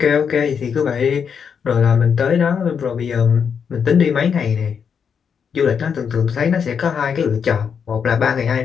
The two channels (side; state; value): right; quieter; 6.9 dB